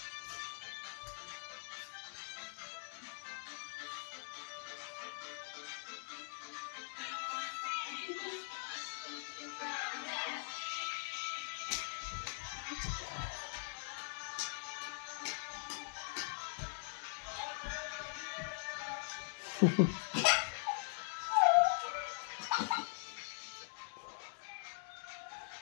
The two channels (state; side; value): silent; right; digital silence